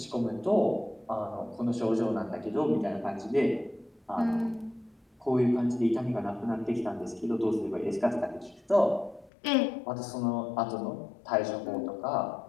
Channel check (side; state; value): right; drops out; at 9.3 s